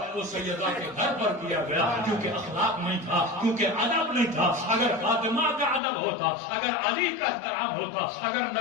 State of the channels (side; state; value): right; drops out; at 5.8 s